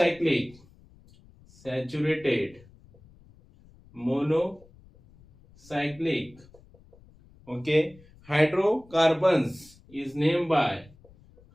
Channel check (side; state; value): left; noise; rumble, 26 dB below the sound